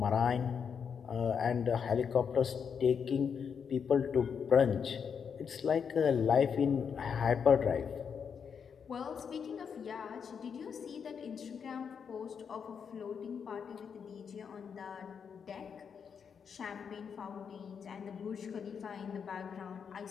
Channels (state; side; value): quieter; right; 6.8 dB